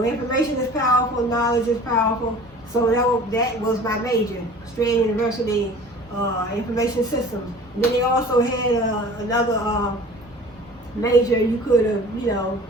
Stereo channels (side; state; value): both; normal; correlation 0.44